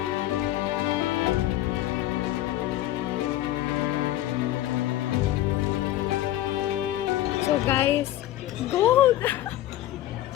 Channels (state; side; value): quieter; right; 14.3 dB